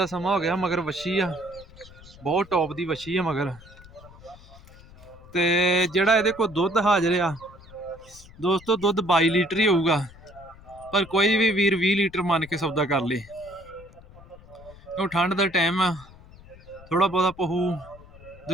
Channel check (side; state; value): left; noise; rumble, 21 dB below the sound